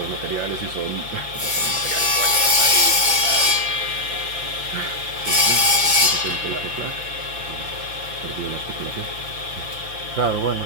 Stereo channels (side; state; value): left; late; 5.8 ms